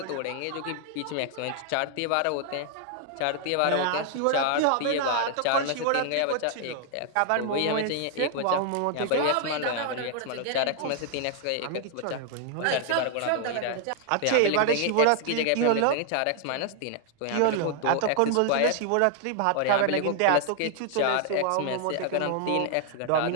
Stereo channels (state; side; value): different; both; correlation 0.00